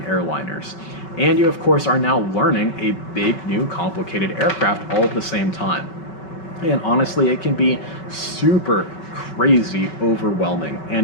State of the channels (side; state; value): right; late; 5.2 ms